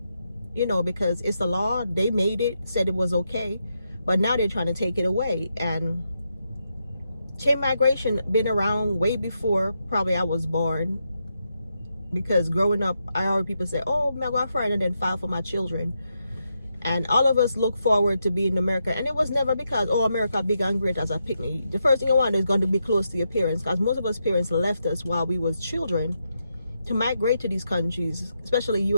because it's the law. They made it, said it was okay, but now they're trying to take it away. And chain migration been around way before probably I was born, because growing up I heard people say, oh, my girlfriend, and then file for my children. And all of us look forward to being in America, and it was never because, oh, America big and great as a picnic. The first thing you want is going to be close to your parents, because most of us parents left us while we was children to migrate to these countries, especially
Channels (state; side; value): inverted; both; correlation -0.83